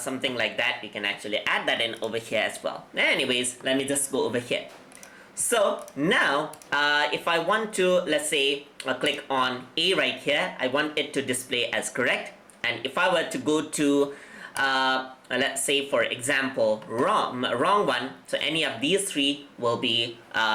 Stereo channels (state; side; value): identical; both; correlation 1.00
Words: like that, you can actually add that in over here as well. Anyways, let me just go over here. So now if I want to, let's say, click on A right here, I want it to display as correct. And if I were to go to let's say for example wrong one, so any of these 3 will be